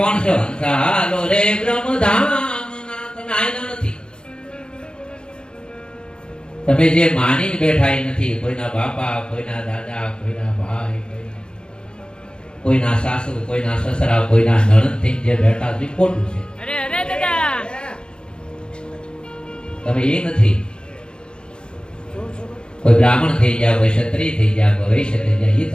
છો? હાલો રે બ્રહ્મધામ. તમે આયના નથી. તમે જે માની બેઠા એ નથી. કોઈના બાપા, કોઈના દાદા, કોઈના ભાઈ, કોઈના સાસુ, કોઈના સસરા, કોઈના નણંદ થઈ જે બેઠા છે ખોટું છે. અરે અરે દાદા, તમે એ નથી. કોઈ બ્રાહ્મણ થઈ જાય, કોઈ ક્ષત્રિય થઈ જાય, કોઈ વૈશ્ય થઈ જાય, એ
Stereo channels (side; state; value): right; late; 0.050 ms